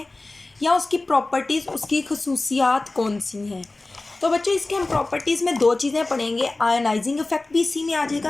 या उसकी प्रॉपर्टीज़, उसकी खसूसियात कौन सी हैं। तो बच्चों इसके हम प्रॉपर्टीज़ में दो चीज़ें पढ़ेंगे। आयोनाइजिंग इफेक्ट भी इसी में आ जाएगा,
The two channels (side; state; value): right; quieter; 3.1 dB